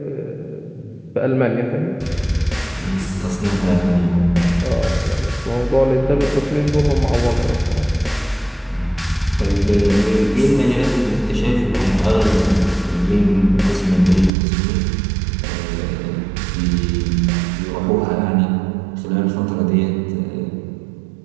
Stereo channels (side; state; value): left; drops out; at 14.3 s